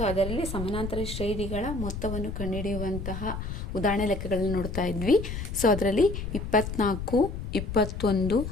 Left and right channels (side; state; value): left; noise; rumble, 6 dB below the sound